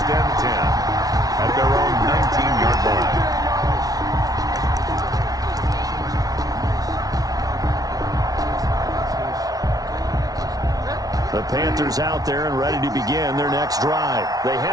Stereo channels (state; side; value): late; left; 0.18 ms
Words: and 10 at their own 19-yard line. The Panthers out there and ready to begin their next drive. They